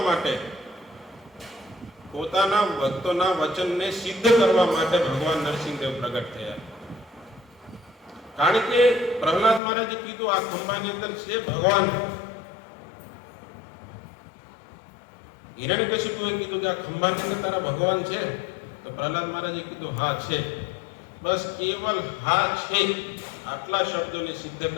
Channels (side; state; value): right; drops out; at 9.6 s